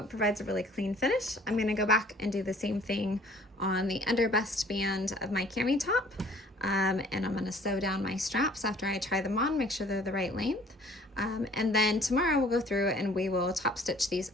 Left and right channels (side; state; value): both; normal; correlation 0.54